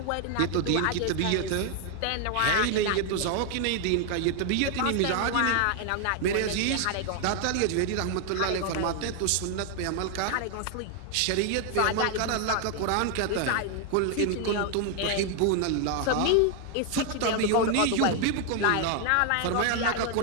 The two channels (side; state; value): both; different; correlation 0.00